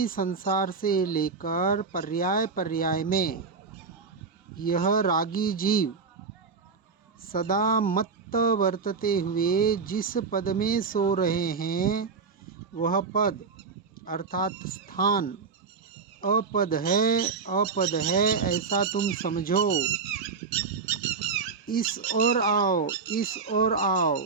संसार से लेकर पर्याय पर्याय में यह रागी जीव सदा मत्त वर्तते हुए जिस पद में सो रहे हैं वह पद अर्थात स्थान अपद है ऐसा तुम समझो। इस ओर आओ,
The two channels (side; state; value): left; quieter; 5.0 dB